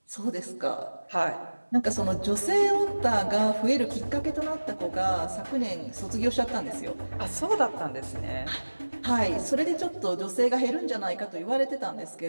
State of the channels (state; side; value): inverted; both; correlation -1.00